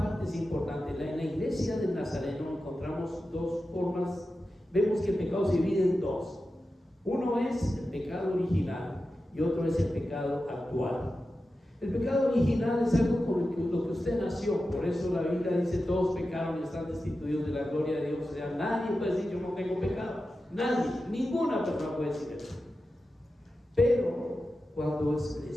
es importante. En la iglesia del Nazareno encontramos dos formas. Vemos que el pecado se divide en dos. Uno es el pecado original y otro es el pecado actual. El pecado original es algo con lo que usted nació. Por eso la Biblia dice: todos pecaron y están destituidos de la gloria de Dios. O sea, nadie puede decir: yo no tengo pecado. Nadie, ninguna persona puede decir eso. Pero cuando el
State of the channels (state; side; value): normal; both; correlation 0.92